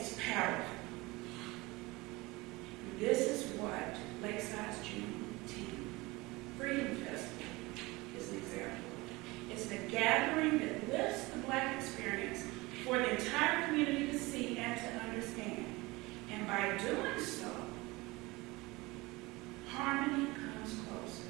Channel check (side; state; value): left; quieter; 22.5 dB